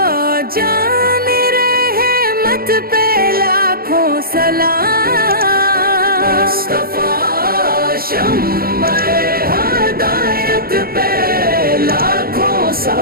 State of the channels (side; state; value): left; late; 0.43 ms